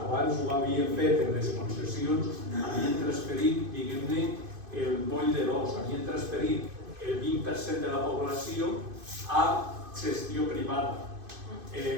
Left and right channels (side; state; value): left; late; 2.5 ms